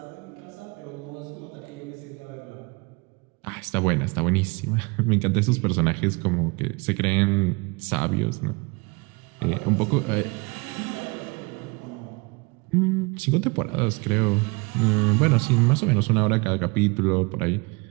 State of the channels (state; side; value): quieter; left; 28.1 dB